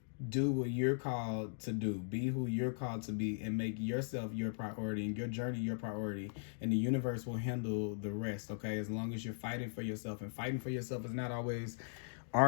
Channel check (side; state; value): right; silent; digital silence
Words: do what you're called to do, be who you're called to be, and make yourself your priority and your journey your priority, and the universe will handle the rest. Okay, as long as you're fighting for yourself. And fighting for yourself is not always